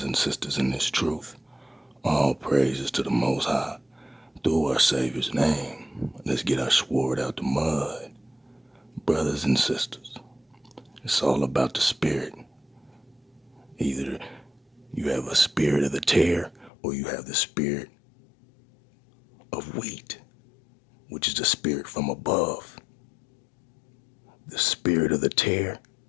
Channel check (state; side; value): drops out; right; at 16.7 s